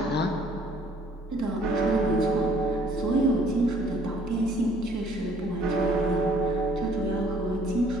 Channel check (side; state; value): both; normal; correlation 0.59